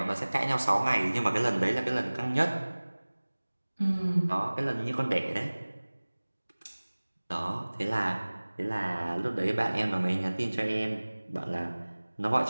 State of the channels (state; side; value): inverted; both; correlation -1.00